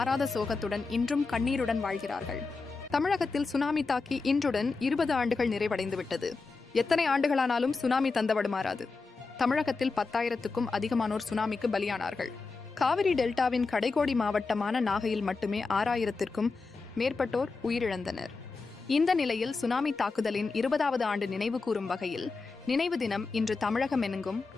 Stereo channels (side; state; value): right; quieter; 4.1 dB